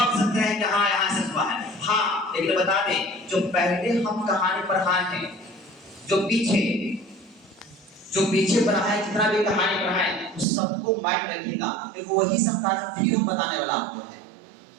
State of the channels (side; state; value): left; drops out; at 10.5 s